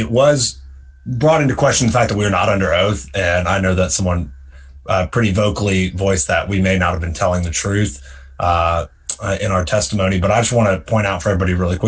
was brought into question the fact that we were not under oath. And I know that someone pretty vocally voiced that we may not have been telling the truth in our testimony. But I just want to point out for everybody really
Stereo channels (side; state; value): both; identical; correlation 1.00